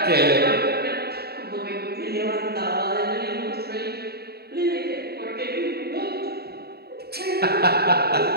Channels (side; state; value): left; late; 0.46 ms